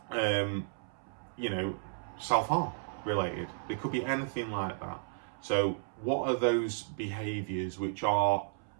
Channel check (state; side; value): silent; left; 55 dB below the other